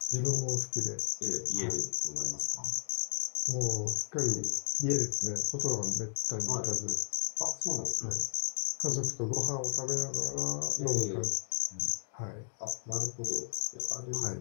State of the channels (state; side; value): silent; right; digital silence